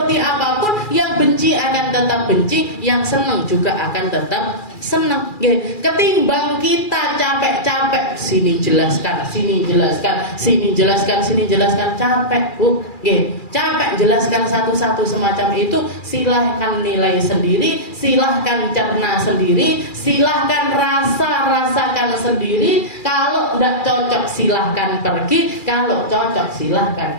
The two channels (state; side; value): late; right; 2.4 ms